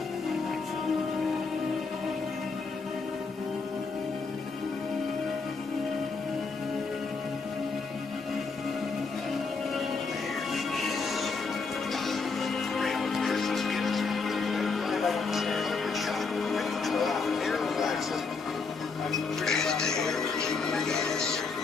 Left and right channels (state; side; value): quieter; right; 4.6 dB